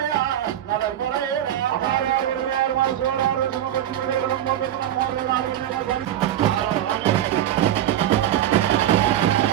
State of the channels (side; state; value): left; quieter; 11.5 dB